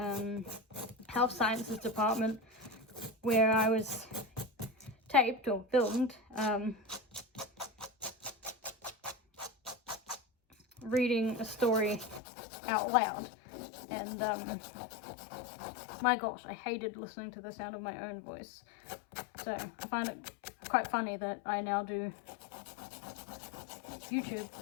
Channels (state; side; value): drops out; right; at 12.2 s